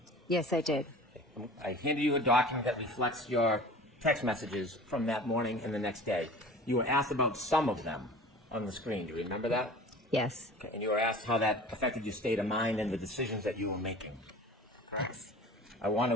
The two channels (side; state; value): both; normal; correlation 0.41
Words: Yes, I did. I handed you a document that reflects your text messages from that morning and the next day. You were asked about some of them on the screen. Do you remember that? Yes. Okay. And you were asked how that affected your state of mind and the decisions that you were making. Yes. I want